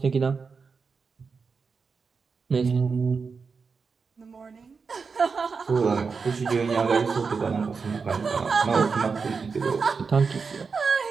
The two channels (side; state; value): left; quieter; 5.1 dB